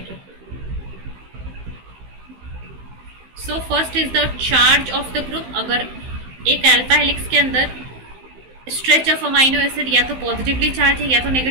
So first is the charge of the group. अगर एक अल्फा हेलिक्स के अंदर स्ट्रेच ऑफ अमाइनो एसिड या तो पॉजिटिवली चार्ज है या तो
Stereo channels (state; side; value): late; left; 15 ms